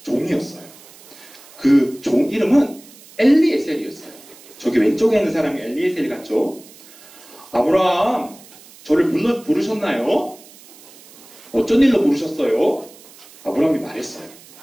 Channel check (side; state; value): right; noise; hiss, 22 dB below the sound